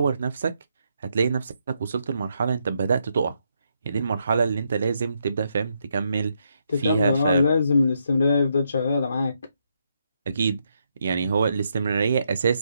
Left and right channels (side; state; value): both; inverted; correlation -0.79